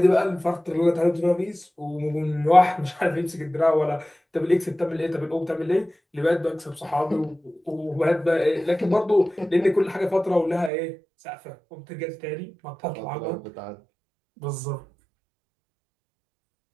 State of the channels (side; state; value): left; drops out; at 10.7 s